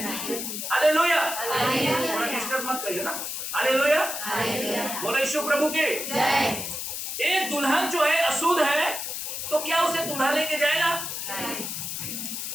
हालेलुया, मत कहिए ना, हालेलुया, बोलो यीशु प्रभु के जय। एक दुल्हन जो है अशुद्ध है तो क्या उसे दूल्हा लेके जाएगा?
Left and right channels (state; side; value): noise; left; hiss, 5 dB below the sound